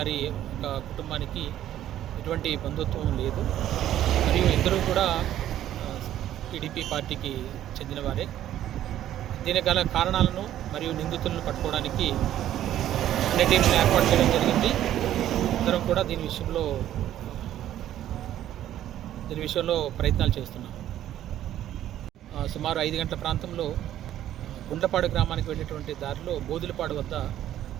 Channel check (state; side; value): quieter; left; 12.1 dB